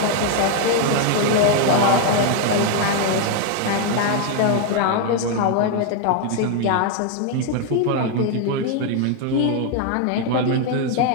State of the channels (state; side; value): different; both; correlation 0.00